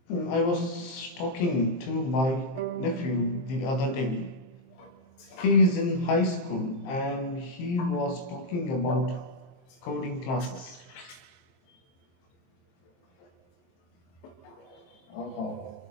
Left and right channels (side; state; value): right; late; 23 ms